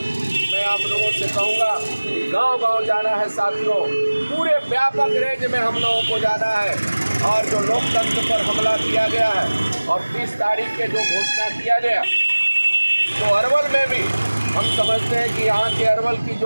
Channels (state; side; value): inverted; both; correlation -1.00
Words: मैं आप लोगों से कहूँगा, गांव-गांव जाना है साथियों, पूरे व्यापक रेंज में हम लोगों को जाना है। और जो लोकतंत्र पर हमला किया गया है और 30 तारीख के जो घोषणा किया गया, तो अरवल में भी हम समझते हैं कि यहाँ के अरवल की